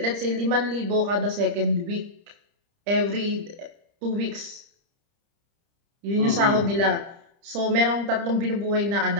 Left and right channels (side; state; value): left; late; 30 ms